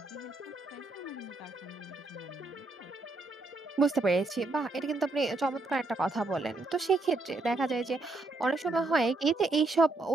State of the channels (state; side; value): quieter; left; 3.2 dB